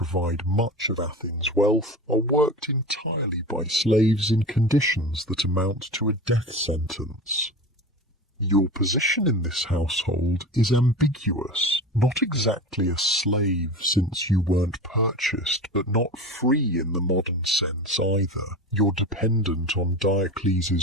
much of Athens' wealth, are worked entirely by slaves in conditions that amount to a death sentence. Your position in this household is ambiguous. Not exactly a slave, since you weren't purchased, but not free in the modern sense either. You're dependent on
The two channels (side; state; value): both; normal; correlation 0.30